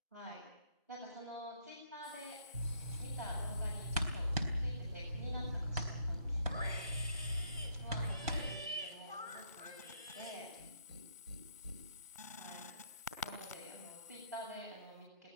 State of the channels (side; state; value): both; inverted; correlation -0.70